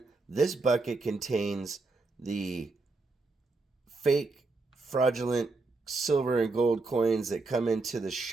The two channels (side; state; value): left; quieter; 3.5 dB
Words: this bucket contains the fake, fraudulent silver and gold coins that come into the